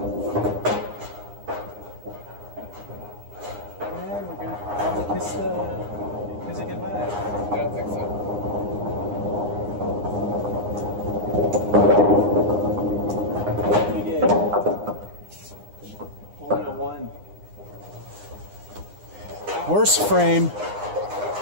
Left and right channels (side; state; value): left; late; 9.8 ms